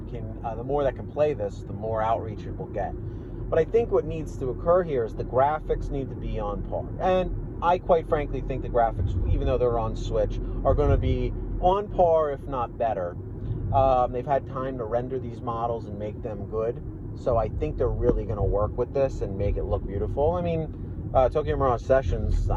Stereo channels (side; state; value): both; identical; correlation 1.00